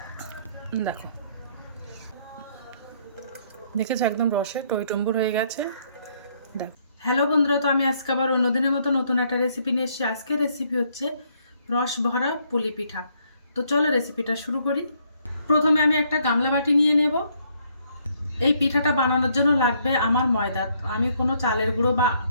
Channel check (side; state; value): both; inverted; correlation -0.69